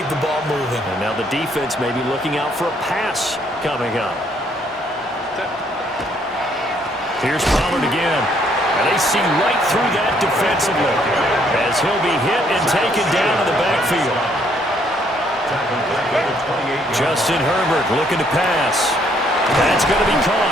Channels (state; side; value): normal; both; correlation 0.68